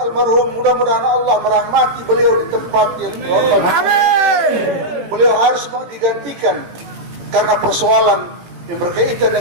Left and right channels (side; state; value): left; late; 18 ms